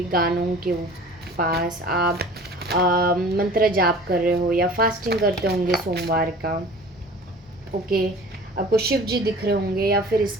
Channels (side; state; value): both; normal; correlation 0.44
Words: गानों के पास। आप मंत्र जाप कर रहे हो या फास्टिंग करते होंगे सोमवार का। ओके, आपको शिव जी दिख रहे होंगे या फिर